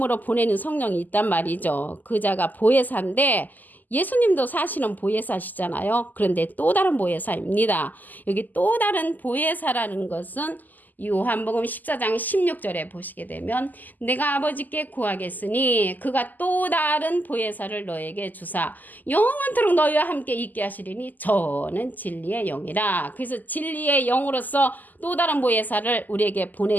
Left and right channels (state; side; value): late; right; 0.084 ms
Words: 보내는 성령이 있단 말이죠. 그 자가 보혜사인데 예수님도 사실은 보혜사시잖아요. 그런데 또 다른 보혜사입니다. 여기 또 다른 보혜사라는 것은 요한복음 14장 16절에 보시게 되면 내가 아버지께 구하겠으니 그가 또 다른 보혜사를 너에게 주사 영원토록 너희와 함께 있게 하시리니 저는 진리의 영이라. 그래서 진리의 영으로서 또 다른 보혜사를 우리에게